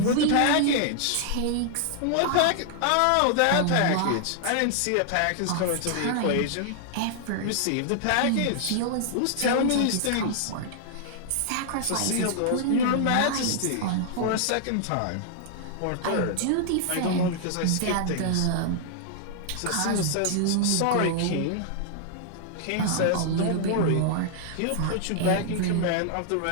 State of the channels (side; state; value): both; different; correlation -0.01